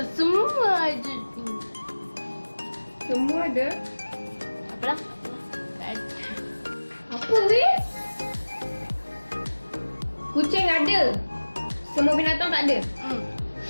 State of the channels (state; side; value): inverted; both; correlation -1.00